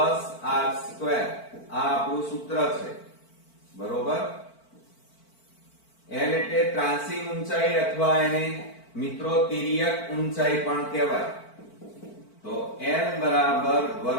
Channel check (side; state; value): right; late; 4.5 ms